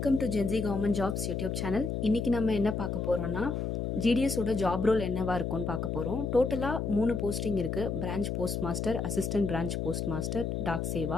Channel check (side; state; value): left; noise; hum, 1 dB below the sound